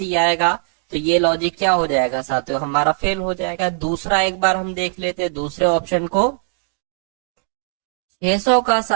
आएगा। तो ये लॉजिक क्या हो जाएगा साथियों, हमारा फेल हो जाएगा। दूसरा एक बार हम देख लेते हैं दूसरे ऑप्शन को, 600 का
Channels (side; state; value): left; silent; digital silence